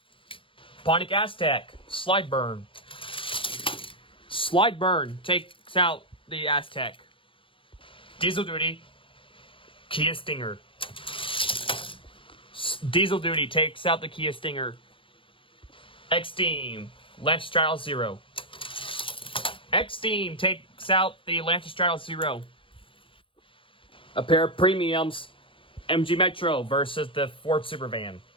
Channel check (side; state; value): right; late; 0.25 ms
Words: Pontiac Aztek Slide Burn. Slide Burn takes out the Aztek. Diesel Duty Kia Stinger. Diesel Duty takes out the Kia Stinger. X-Team Lancestraddle Zero. X-Team takes out the Lancestraddle Zero. A pair of premiums, MG Metro versus the Ford Supervan.